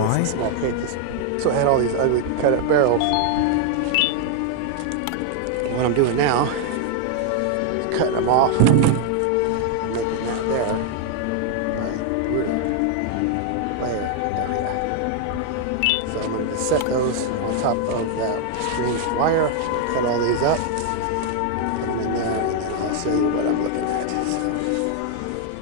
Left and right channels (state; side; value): different; both; correlation 0.00